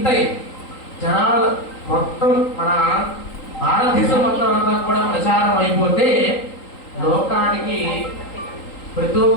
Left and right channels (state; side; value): late; right; 3.8 ms